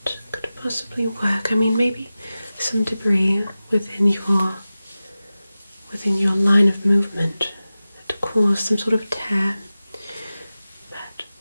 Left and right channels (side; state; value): both; inverted; correlation -0.95